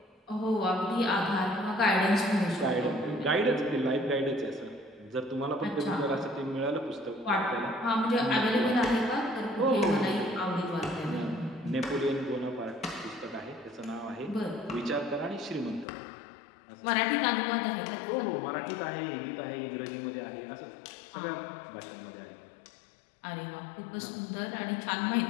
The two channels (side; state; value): right; drops out; at 15.9 s